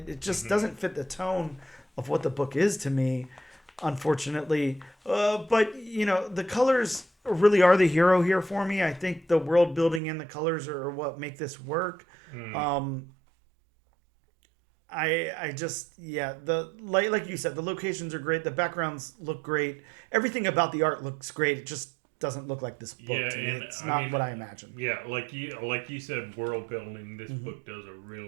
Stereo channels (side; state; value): left; drops out; at 10.0 s